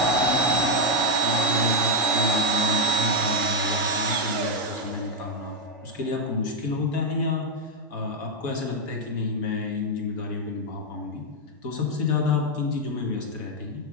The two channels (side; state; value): both; normal; correlation 0.03